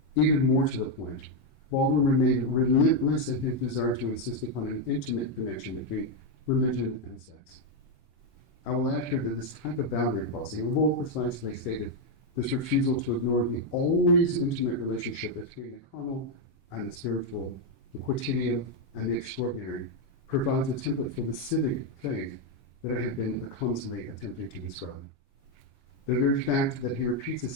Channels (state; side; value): late; right; 22 ms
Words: Even more to the point, Baldwin remained relentless in his desire to insist upon an intimate connection between religion and sex. I will add here that this type of boundary crossing, or more precisely stated, this refusal to ignore the always intimate relationship between the carnal and the spiritual, the quotidian and the extraordinary, provides a template for the civic faith that I have been clumsily attempting to describe. The very fact that he repeats